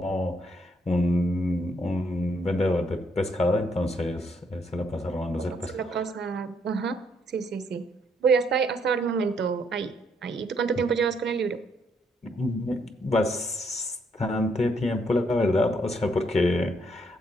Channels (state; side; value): normal; both; correlation 0.72